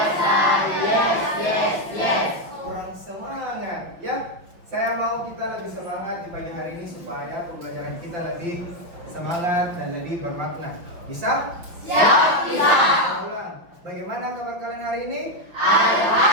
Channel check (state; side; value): late; left; 6.0 ms